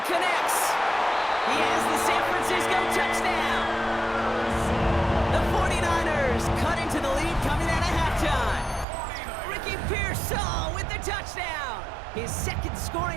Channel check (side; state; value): left; drops out; at 8.8 s